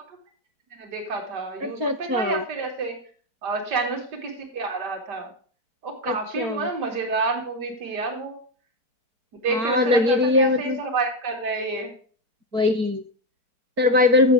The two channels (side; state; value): left; late; 4.4 ms